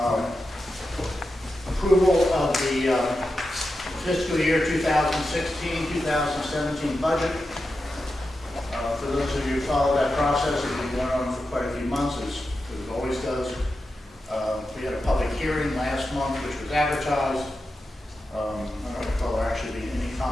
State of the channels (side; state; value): both; normal; correlation 0.90